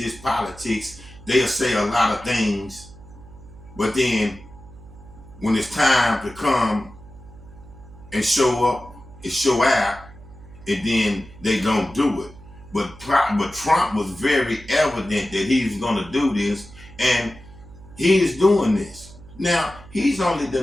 politics. They'll say a lot of things, but then when it's time to come and show up and show out, and then they don't do it. But Trump was very evident that he was going to do this, and he is doing this. Now, he's only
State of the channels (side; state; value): right; noise; hum, 20 dB below the sound